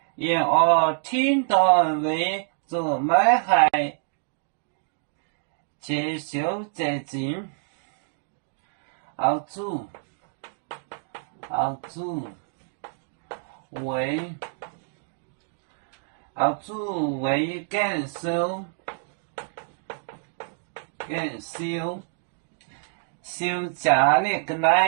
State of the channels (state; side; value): silent; left; digital silence